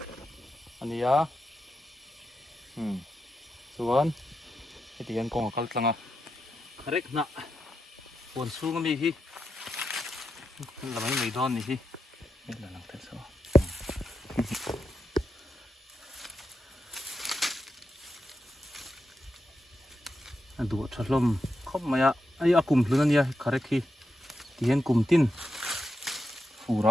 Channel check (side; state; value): both; normal; correlation 0.87